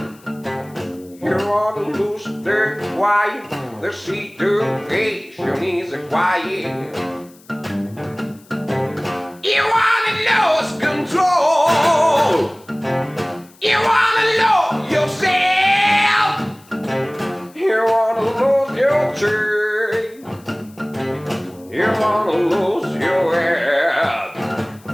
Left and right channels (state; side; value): noise; left; hiss, 27 dB below the sound